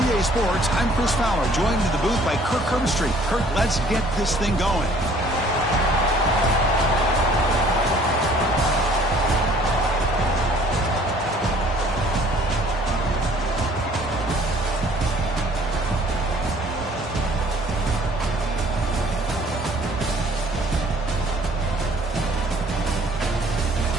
Sports, I'm Chris Fowler, joined in the booth by Kirk Herbstreit. Kirk, let's get this thing going.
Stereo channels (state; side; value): normal; both; correlation 0.56